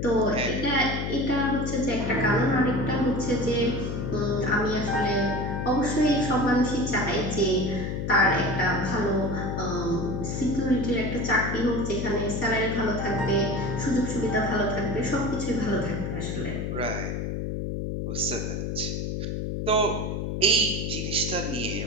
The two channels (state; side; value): noise; left; hum, 2 dB below the sound